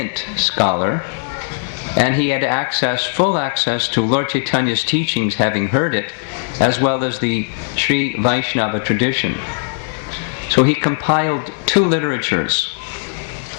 scholar, and he had full access to Lord Chaitanya's teachings, having heard it, as well as the Sri Vaishnava tradition. So he compiled 2 literatures.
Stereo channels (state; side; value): silent; right; digital silence